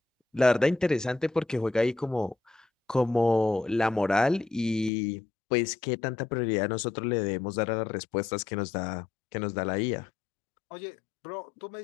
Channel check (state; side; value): drops out; right; at 4.9 s